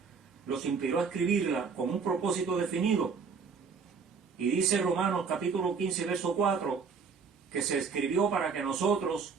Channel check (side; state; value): left; quieter; 5.5 dB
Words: los inspiró a escribirla con un propósito definido. Y dice Romanos capítulo 15, verso 4, que se escribió para que nosotros,